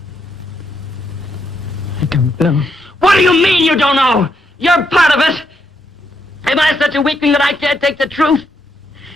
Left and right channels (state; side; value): normal; both; correlation 0.78